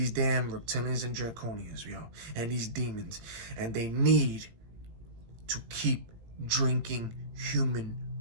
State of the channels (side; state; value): left; late; 18 ms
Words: damn reptilians and draconians, yo, and these demons. And they need to keep drinking human